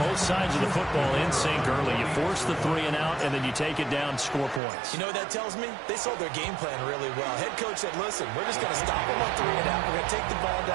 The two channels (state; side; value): drops out; left; at 4.6 s